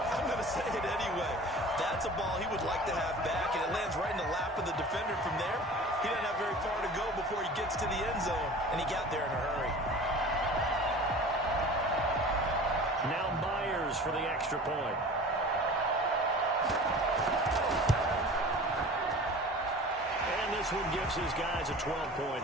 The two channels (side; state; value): both; normal; correlation 0.40